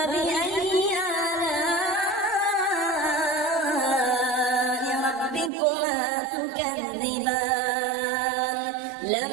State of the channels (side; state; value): left; drops out; at 5.5 s